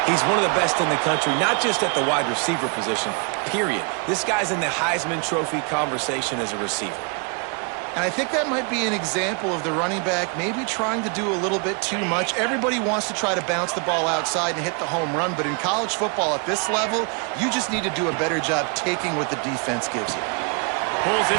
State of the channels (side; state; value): left; quieter; 36.2 dB